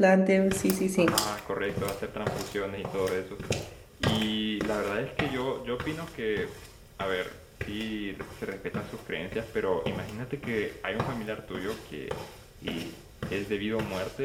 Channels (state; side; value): identical; both; correlation 1.00